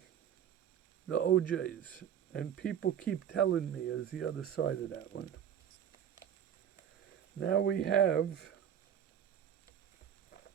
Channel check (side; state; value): left; quieter; 9.1 dB